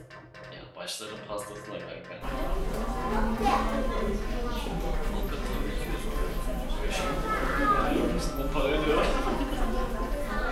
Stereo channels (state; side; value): identical; both; correlation 1.00